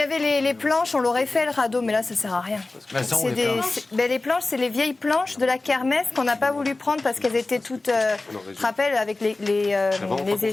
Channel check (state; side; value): quieter; right; 3.2 dB